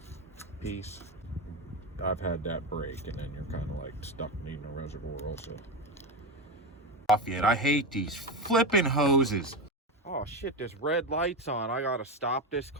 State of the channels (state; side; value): normal; both; correlation 0.16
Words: piece, I've had that break, and then you're kind of like stuck needing a reservoir also. Off yet. I hate these flipping hoses. Oh shit, this red light's on. I gotta stop this